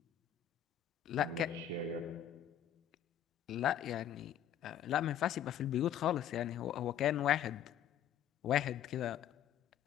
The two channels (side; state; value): right; quieter; 10.1 dB